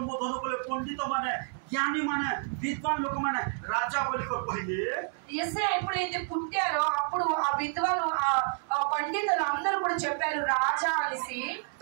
कले पंडित माने ज्ञानी माने विद्वान लोक मैंने राजा बोली कहले యేసయ్య ఎప్పుడైతే పుట్టారో అప్పుడు ఆ విద్వాను ఆ పండితులు అందరూ కూడా చెప్పారు రాజా అనేసి.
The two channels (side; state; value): left; silent; 58 dB below the other